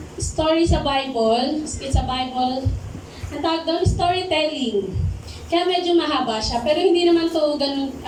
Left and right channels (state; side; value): identical; both; correlation 1.00